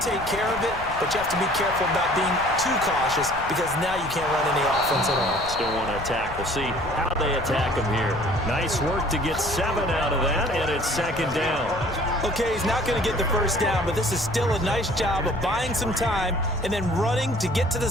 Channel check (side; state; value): left; noise; rumble, 13 dB below the sound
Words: take care of it, but you have to be careful about being too cautious because now you can't run any offense at all. Still want to attack. We'll see how they attack him here. Nice work to get 7 out of that, and it's 2nd down. Okay, he's not going to get the 1st down, but this is still a nice job of buying some time and then running to get to